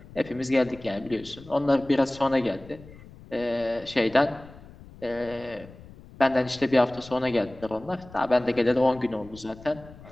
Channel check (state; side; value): noise; left; rumble, 19 dB below the sound